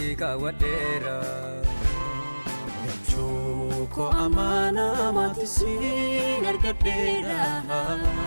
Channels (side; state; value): both; inverted; correlation -1.00